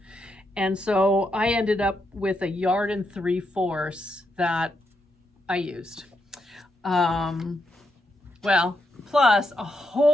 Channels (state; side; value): normal; both; correlation 0.81